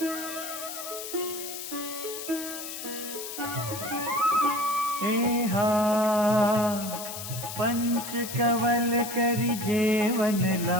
एहा पंच कवल करि जेवन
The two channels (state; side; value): noise; left; hiss, 8 dB below the sound